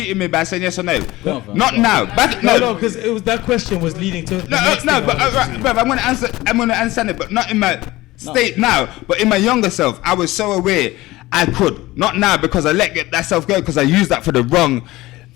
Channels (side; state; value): right; quieter; 18.5 dB